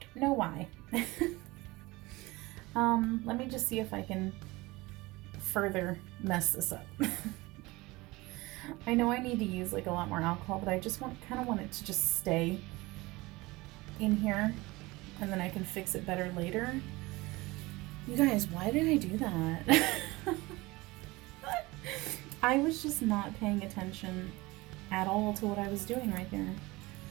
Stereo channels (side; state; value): left; quieter; 21.7 dB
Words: know why. Let me just see if I can further mess this up. I know I need to use like a lot more alcohol, but I just kind of want it to just stay in here and then I can fix it better later. You guys, why did I do that? I was just not paying attention at all to what I was doing right there.